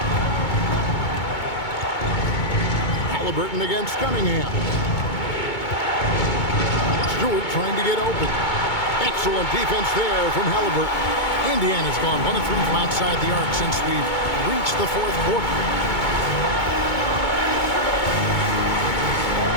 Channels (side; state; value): right; late; 2.2 ms